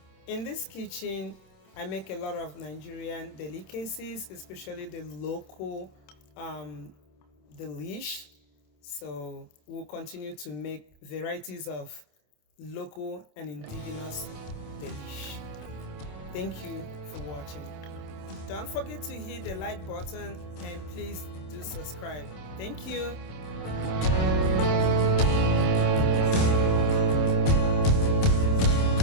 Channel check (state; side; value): late; right; 26 ms